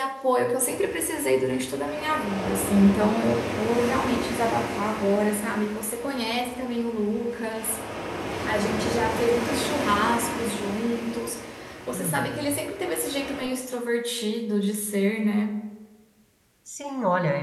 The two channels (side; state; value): both; identical; correlation 1.00